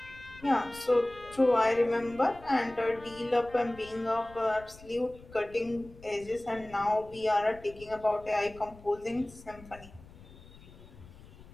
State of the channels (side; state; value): left; noise; rumble, 20 dB below the sound